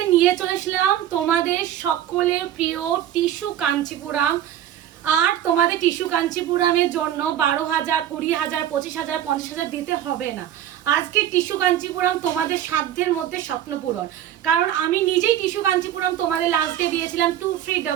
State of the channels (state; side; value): quieter; left; 11.3 dB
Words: নিয়ে চলে এসলাম তোমাদের সকলের প্রিয় টিস্যু কাঞ্চিপুরাম। আর তোমাদের টিস্যু কাঞ্চিপুরামের জন্য 12,000, 20,000, 25,000, 50,000 দিতে হবে না। আজকে টিস্যু কাঞ্চিপুরাম তোমাদের সাধ্যের মধ্যে স্বপ্ন পূরণ। কারণ আমি নিজেই টিস্যু কাঞ্চিপুরাম তোমাদের লাস্ট ডে দিয়েছিলাম